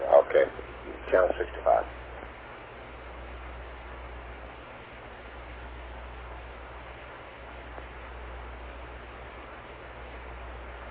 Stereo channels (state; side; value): identical; both; correlation 1.00